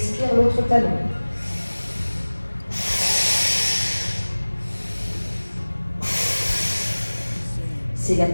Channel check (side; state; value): both; inverted; correlation -1.00